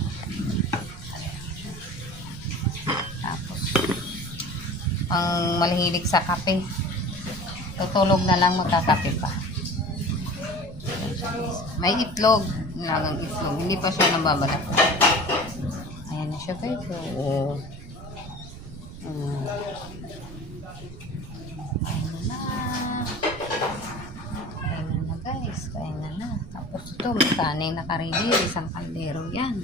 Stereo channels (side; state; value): right; noise; rumble, 13 dB below the sound